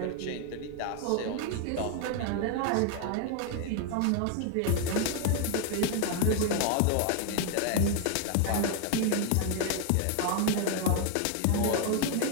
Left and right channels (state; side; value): different; both; correlation 0.00